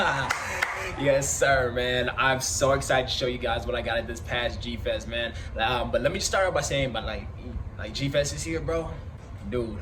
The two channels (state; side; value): identical; both; correlation 1.00